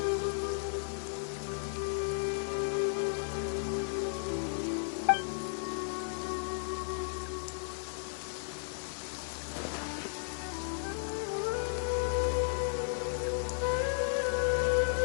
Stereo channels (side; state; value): right; silent; digital silence